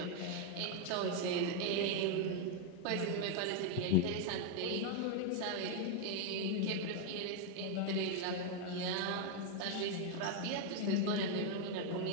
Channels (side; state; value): both; different; correlation 0.01